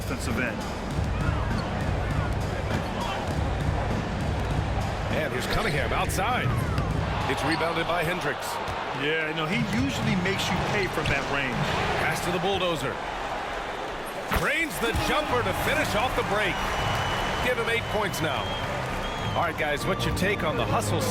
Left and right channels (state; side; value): identical; both; correlation 1.00